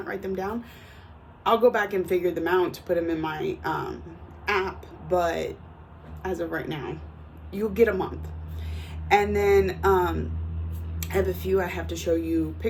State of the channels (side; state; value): both; identical; correlation 1.00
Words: write them down. I'll go back and figure them out to put them in my app, but as of right now, you'll get a month. And then I have a few I have to show you